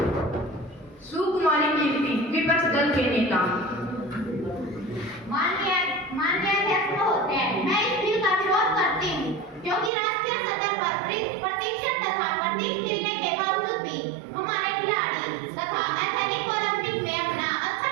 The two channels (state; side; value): drops out; left; at 9.9 s